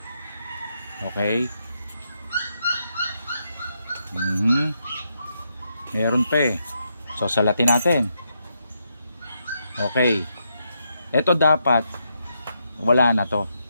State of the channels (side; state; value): both; inverted; correlation -0.81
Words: Okay? Meron pa eh. So, salatin natin. Okay. Ito dapat, wala na to.